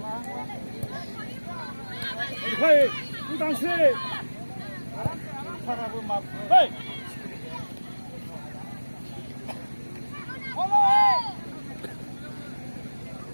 Hey, udang sih. Parabu map. Hey.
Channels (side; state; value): both; inverted; correlation -1.00